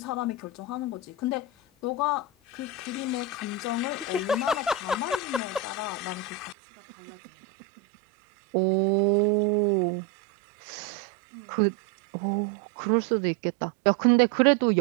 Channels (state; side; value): drops out; left; at 6.6 s